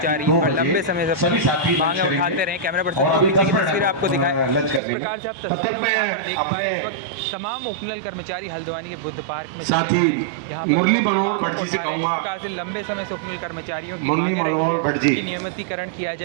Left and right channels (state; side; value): drops out; left; at 4.8 s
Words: लंबे समय से मांगे उठाते रहे। कैमरा पर्सन को पीछे की तस्वीर आपको दिखाएं। जिस प्रकार से आप तस्वीरों में यहाँ पर देख पा रहे हैं, इस वक्त तमाम उपनल कर्मचारी हल्द्वानी के बुद्ध पार्क में जुटे हुए हैं। यहाँ पर अपनी मांगों को उठा रहे हैं। जिस प्रकार से लंबे समय से उपनल कर्मचारियों की मांगे रही है कि नियमितीकरण किया